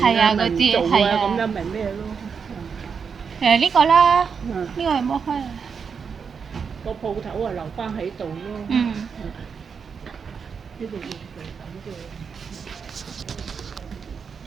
啊咪唔做啊，咁樣咪咩咯？呢個啦，呢個係冇開啊。個鋪頭啊留翻喺度咯。呢度要咁嘅。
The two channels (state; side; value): quieter; left; 6.1 dB